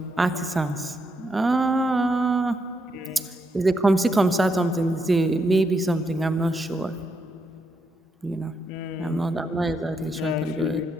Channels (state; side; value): normal; both; correlation 0.80